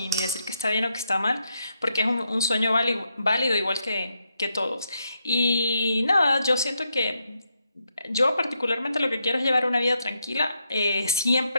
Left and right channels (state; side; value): inverted; both; correlation -0.81